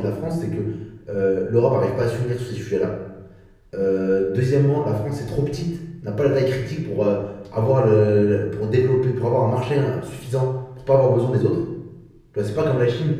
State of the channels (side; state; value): both; identical; correlation 1.00